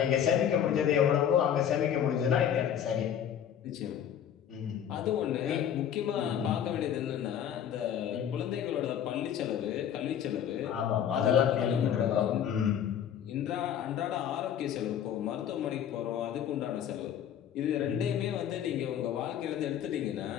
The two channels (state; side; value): quieter; right; 9.4 dB